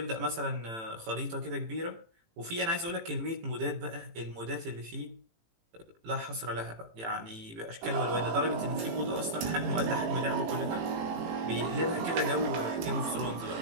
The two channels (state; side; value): late; left; 18 ms